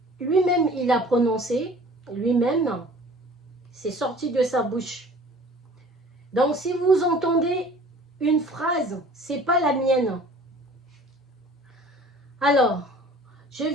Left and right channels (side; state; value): both; normal; correlation 0.47